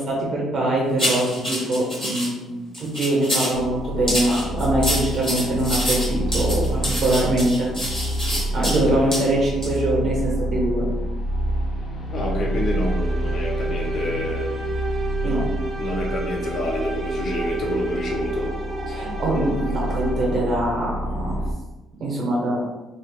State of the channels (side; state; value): both; normal; correlation 0.72